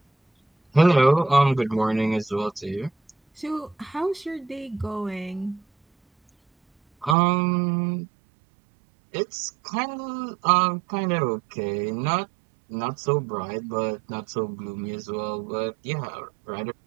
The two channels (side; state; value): left; drops out; at 7.2 s